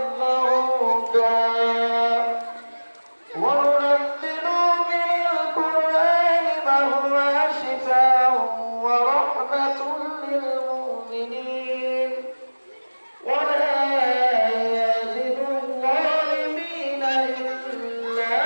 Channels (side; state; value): both; inverted; correlation -1.00